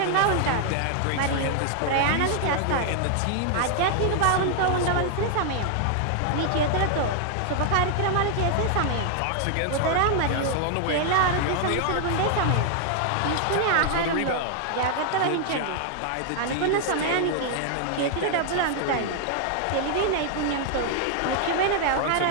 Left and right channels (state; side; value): different; both; correlation 0.00